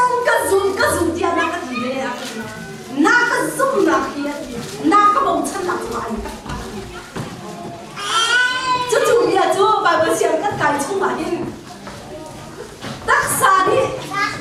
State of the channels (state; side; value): identical; both; correlation 1.00